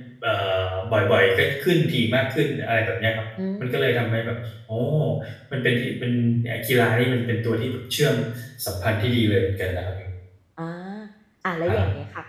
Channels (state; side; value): identical; both; correlation 1.00